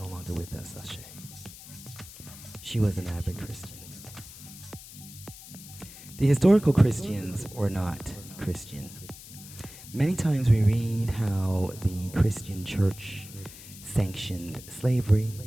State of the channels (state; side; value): noise; left; hiss, 16 dB below the sound